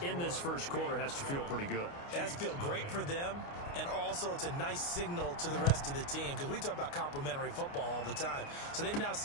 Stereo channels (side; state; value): right; late; 29 ms